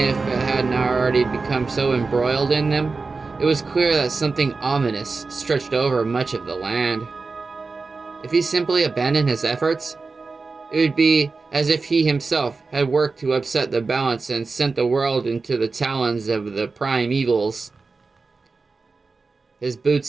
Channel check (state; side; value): quieter; left; 4.1 dB